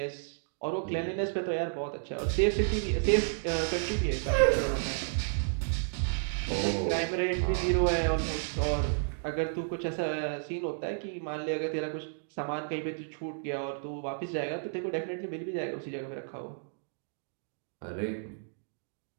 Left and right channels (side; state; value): left; silent; digital silence